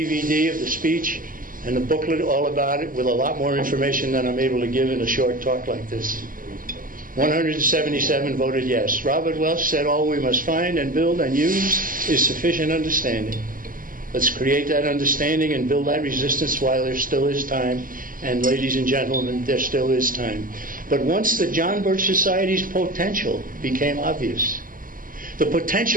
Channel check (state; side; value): late; left; 0.40 ms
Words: of the speech and the booklet all about it with a lot more information than I'm able to give in a short talk like this. 177 voted yes. Robert Welch said all we must find and build and use is sufficient understanding. Let's create that understanding and build that resistance while there still is time. And ladies and gentlemen, there still is time. But once the John Birch Society's potential became obvious, the